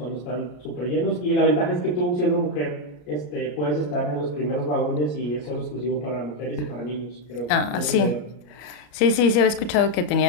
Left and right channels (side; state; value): right; late; 34 ms